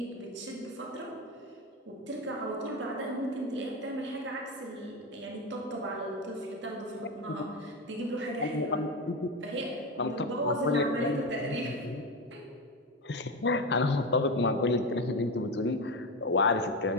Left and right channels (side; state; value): both; normal; correlation 0.17